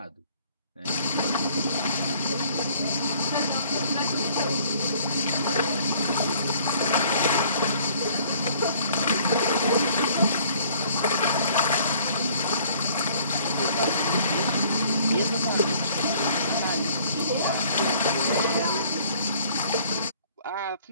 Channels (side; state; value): both; inverted; correlation -0.57